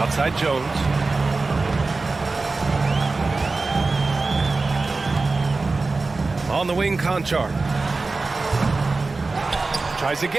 Jones. On the wing, Conchar. Tries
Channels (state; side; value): quieter; left; 3.7 dB